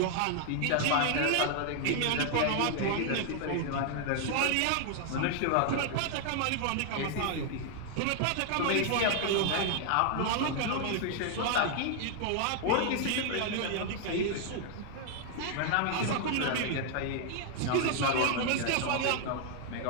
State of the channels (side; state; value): both; different; correlation 0.00